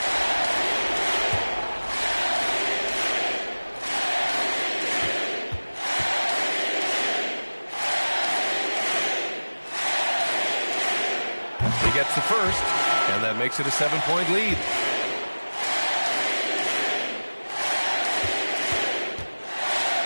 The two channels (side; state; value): both; inverted; correlation -1.00